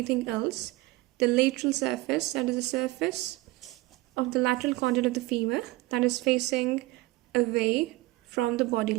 else. The lateral surface, that is the surface of the lateral condyle of the femur that is facing away from the body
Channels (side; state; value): left; quieter; 20.2 dB